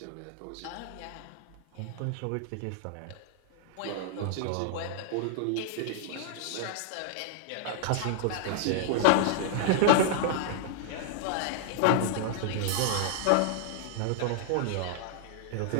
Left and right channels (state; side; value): different; both; correlation -0.01